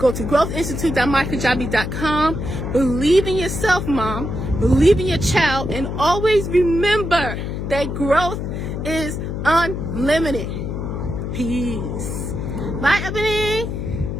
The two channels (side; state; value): left; noise; hum, 4 dB below the sound